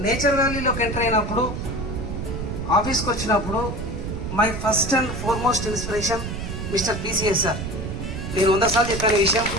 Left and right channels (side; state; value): right; noise; rumble, 5 dB below the sound